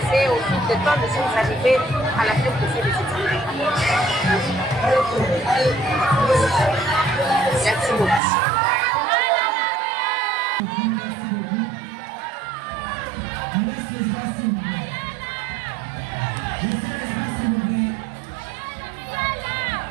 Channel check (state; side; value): drops out; left; at 8.2 s